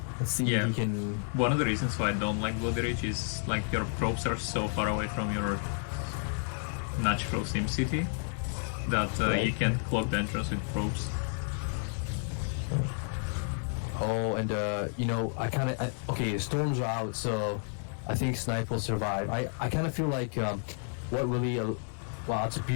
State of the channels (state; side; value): silent; right; 57 dB below the other